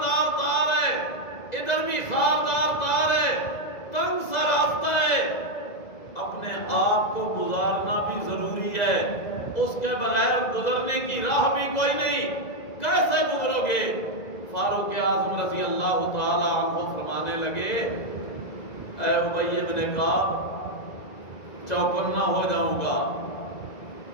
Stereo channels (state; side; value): late; right; 2.0 ms